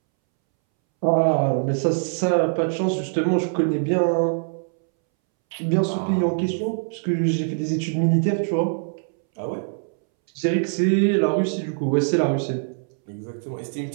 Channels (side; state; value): left; silent; 63 dB below the other